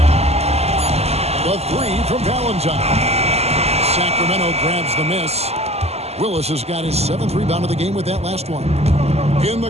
The three from Valentine. Sacramento grabs the miss. Willis has got his 7th rebound of the game with that last one. In the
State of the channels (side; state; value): left; late; 0.30 ms